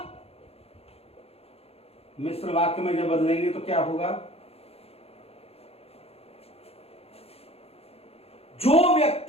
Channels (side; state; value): right; late; 0.29 ms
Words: मिश्र वाक्य में जब बदलेंगे तो क्या होगा? जो